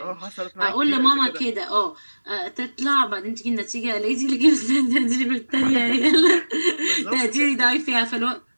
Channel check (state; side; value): inverted; both; correlation -1.00